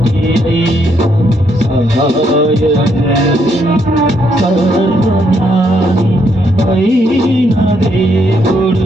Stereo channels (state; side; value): normal; both; correlation 0.74